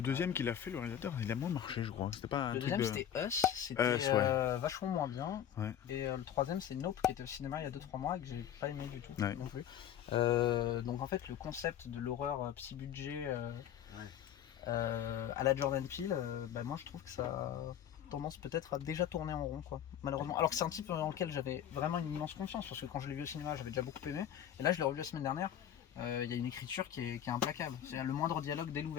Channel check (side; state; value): right; quieter; 10.1 dB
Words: deuxième qu'il a fait, le réalisateur, il a moins marché, je crois. C'était pas un Le truc deuxième de... c'était Us, c'était Us, ouais. vachement moins bien. Ouais. Et le troisième c'est Nope qui était au cinéma il y a 2-3 mois et que j'ai pas aimé du tout Ouais. non plus. Donc en fait le concept de l'horreur petit budget à la Jordan Peele, moi je trouve que ça a tendance peut-être à déjà tourner en rond quoi, malheureusement. Alors que c'est un type dans lequel j'avais vraiment une immense confiance parce que quand je l'ai vu au cinéma j'avais déjà beaucoup aimé et là je l'ai revu la semaine dernière. Il y a une écriture qui est implacable. C'est le moindre dialogue dès